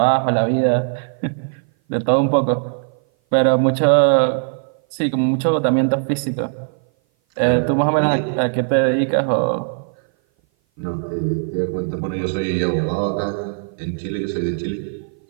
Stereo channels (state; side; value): silent; left; 57 dB below the other